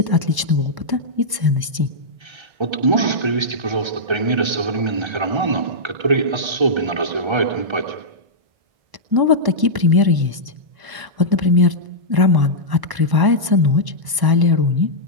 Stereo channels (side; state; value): left; late; 1.0 ms